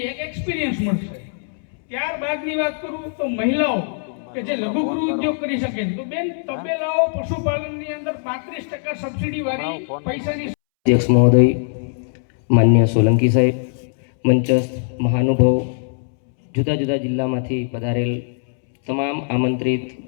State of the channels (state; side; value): silent; right; 65 dB below the other